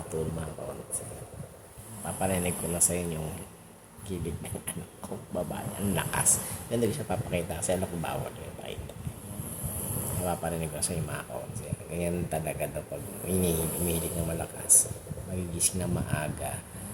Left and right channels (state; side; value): identical; both; correlation 1.00